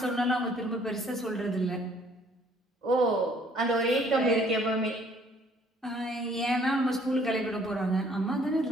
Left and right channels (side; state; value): both; normal; correlation 0.60